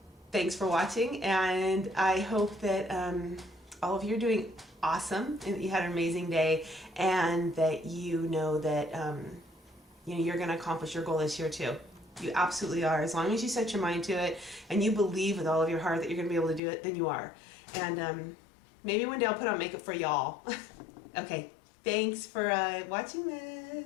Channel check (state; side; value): drops out; right; at 16.6 s